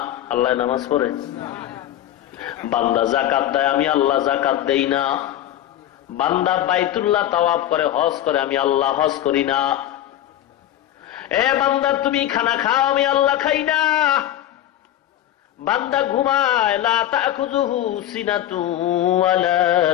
আল্লাহ নামাজ পড়ে। বান্দা যাকাত দেয়, আমি আল্লাহ যাকাত দেই না। বান্দা বাইতুল্লাহ তাওয়াফ করে, হজ করে, আমি আল্লাহ হজ করি না। এ বান্দা, তুমি খানা খাও, আমি আল্লাহ খাই না। বান্দা ঘুমায়, লা তাখুযুহু সিনাতু ওয়ালা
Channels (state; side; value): quieter; right; 12.3 dB